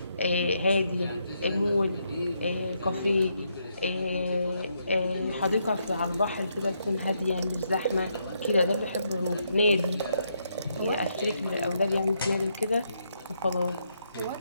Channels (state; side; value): inverted; both; correlation -0.78